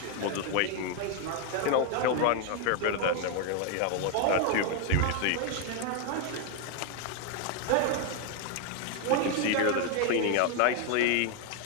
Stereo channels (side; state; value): both; different; correlation 0.01